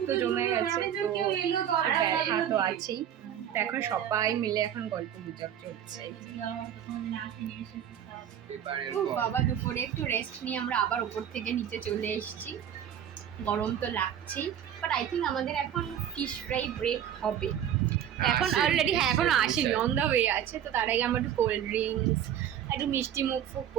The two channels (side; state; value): left; quieter; 9.9 dB